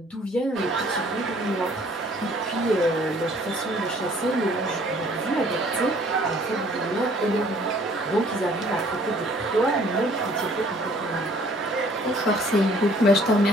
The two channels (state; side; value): normal; both; correlation 0.58